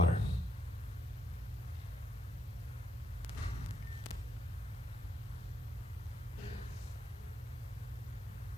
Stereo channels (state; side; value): normal; both; correlation 0.80